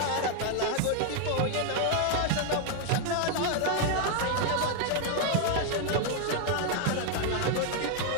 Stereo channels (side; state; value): both; different; correlation 0.01